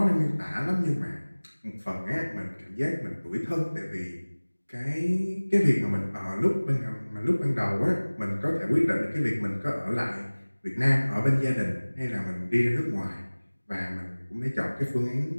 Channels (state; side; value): inverted; both; correlation -1.00